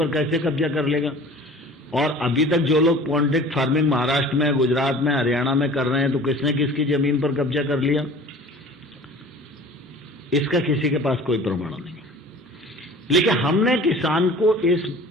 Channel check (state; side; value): normal; both; correlation 0.44